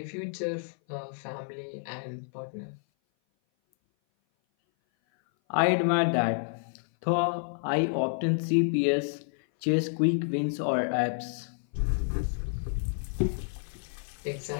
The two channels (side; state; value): right; silent; 57 dB below the other